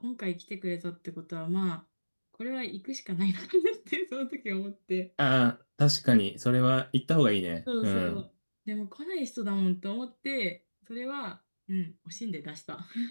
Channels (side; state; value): both; inverted; correlation -1.00